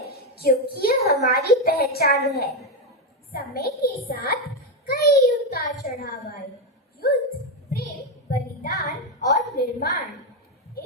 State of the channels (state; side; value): normal; both; correlation 0.06